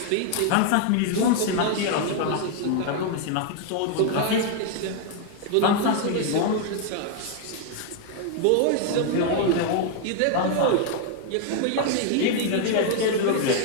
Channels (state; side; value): different; both; correlation 0.00